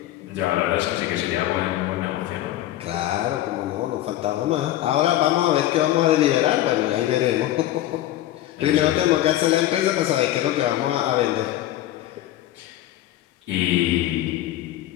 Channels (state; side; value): quieter; right; 13.9 dB